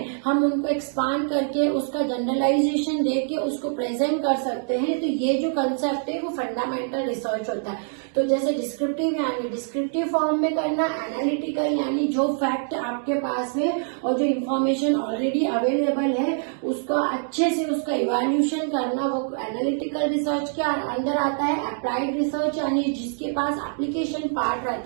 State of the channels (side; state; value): left; silent; 62 dB below the other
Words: हम उनको एक्सपांड करके उसका जनरलाइजेशन देके उसको प्रेजेंट कर सकते हैं। तो ये जो कंसेप्ट है वो फंडामेंटल रिसर्च होता है। तो जैसे डिस्क्रिप्टिव यानी डिस्क्रिप्टिव फॉर्म में करना, एनालिटिकल यानी जो फैक्ट आपके पास है और जो इंफॉर्मेशन ऑलरेडी अवेलेबल है उसका अच्छे से उसका इवैल्यूएशन करना, वो एनालिटिकल रिसर्च के अंदर आता है। अप्लाइड रिसर्च यानी जिसके पास एप्लीकेशन पार्ट